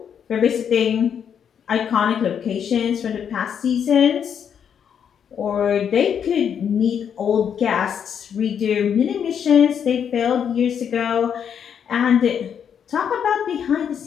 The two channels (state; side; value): quieter; right; 8.0 dB